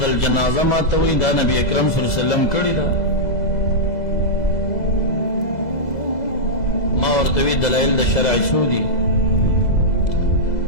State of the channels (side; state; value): right; late; 2.0 ms